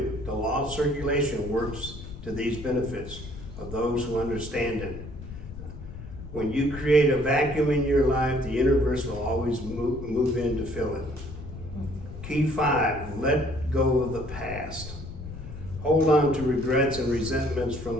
The law of circulation works to these benefits of those who understand it. When you create a vacuum in your life, the universe will always move in to fill it. Key 5, let go of the past. Hold on to regrets and resentments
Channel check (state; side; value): noise; left; rumble, 12 dB below the sound